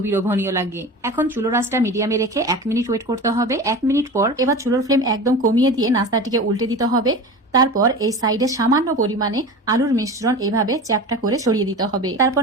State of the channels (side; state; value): both; normal; correlation 0.32